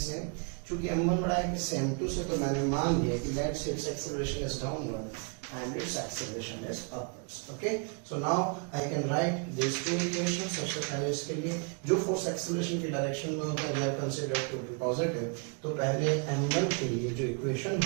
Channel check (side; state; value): left; quieter; 38.1 dB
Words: चूंकि M1 बड़ा है कि M2 से, तो मैंने मान लिया कि let's say it's acceleration is downward and its acceleration is upwards, okay। so now I can write these two equations। सबसे पहले इसके लिए जो फोर्स एक्सेलरेशन की डायरेक्शन में होता है, अगर कंसीडर टू बी पॉजिटिव, तो पहले m1 के लिए जो इक्वेशन